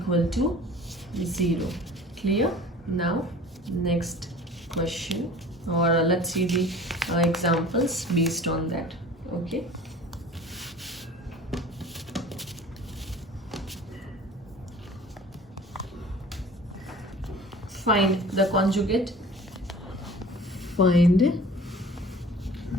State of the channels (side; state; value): both; normal; correlation 0.44